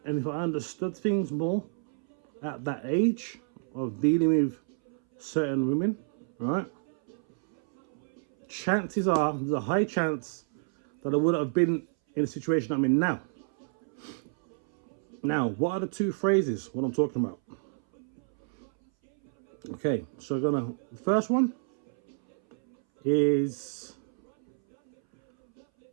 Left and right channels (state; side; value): silent; left; 58 dB below the other